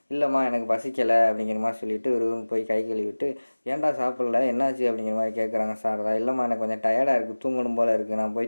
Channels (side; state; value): both; inverted; correlation -1.00